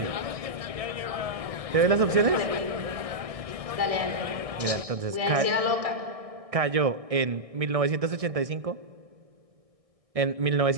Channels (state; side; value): late; left; 1.6 ms